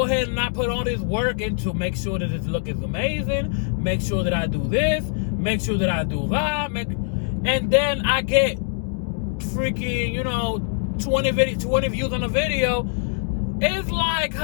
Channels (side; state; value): right; silent; digital silence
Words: ahead and I put all this work into make sure that this look is amazing, make sure that I do this, make sure that I do that, and then I get freaking, 20 views on a video. It's like,